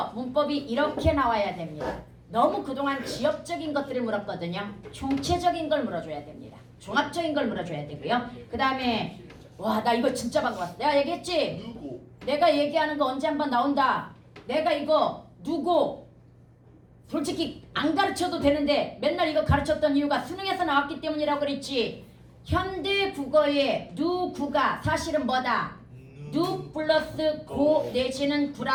문법이 이렇게 나와야 됩니다. 너무 그동안 지역적인 것들을 물었거든요. 총체적인 걸 물어줘야 됩니다. 종합적인 걸 물어줘야 되고요. 그 다음에 와, 나 이거 진짜 반가웠어. 내가 얘기했지? 누구? 내가 얘기하는 거 언제 한번 나온다. 내가 이거 누구 솔직히 안 가르쳐도 되는데 맨날 이거 가르쳤던 이유가 수능에서 나왔기 때문이라고 그랬지. 현대 국어의 누구가 사실은 뭐다? 누 플러스 고 내지는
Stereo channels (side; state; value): both; identical; correlation 1.00